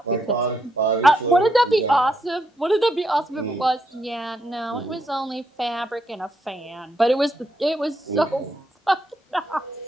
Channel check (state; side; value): normal; both; correlation 0.78